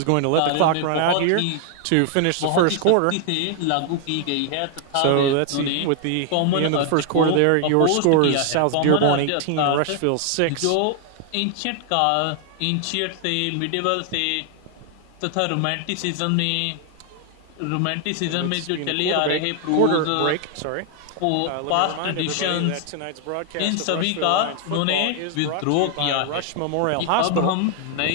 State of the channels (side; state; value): both; different; correlation 0.00